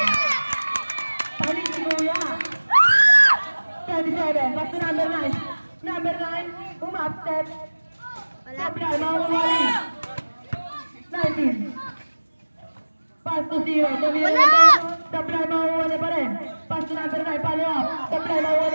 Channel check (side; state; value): both; inverted; correlation -1.00